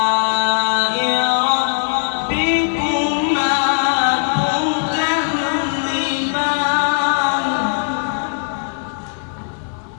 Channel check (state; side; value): silent; right; digital silence